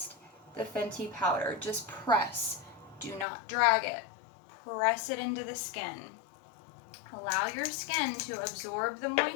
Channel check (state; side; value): drops out; right; at 3.2 s